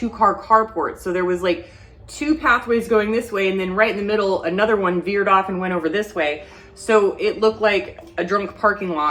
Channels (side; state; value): both; identical; correlation 1.00